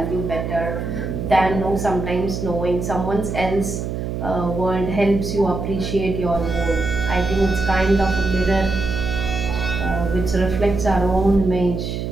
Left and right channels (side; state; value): right; noise; hum, 3 dB below the sound